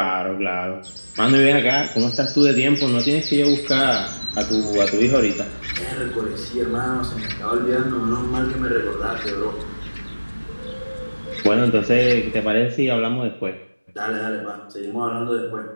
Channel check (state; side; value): inverted; both; correlation -1.00